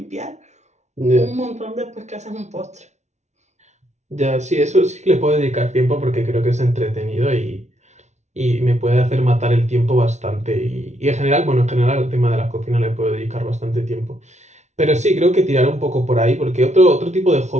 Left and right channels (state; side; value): late; left; 0.33 ms